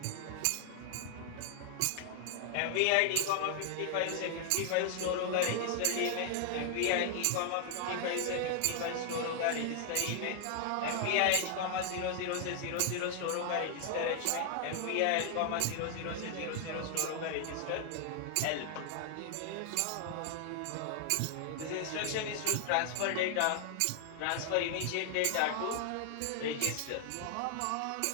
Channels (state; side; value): different; both; correlation 0.00